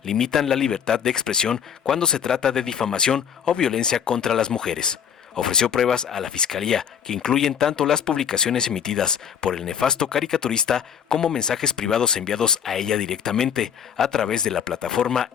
limitan la libertad de expresión cuando se trata de difamación o violencia contra las mujeres. Ofreció pruebas a la Fiscalía que incluyen tanto las publicaciones emitidas por el nefasto caricaturista como mensajes privados enviados a ella directamente a través de la plataforma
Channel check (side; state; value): right; quieter; 8.0 dB